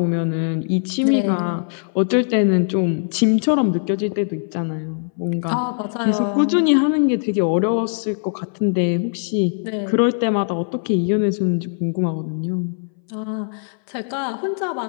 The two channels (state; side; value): silent; right; 62 dB below the other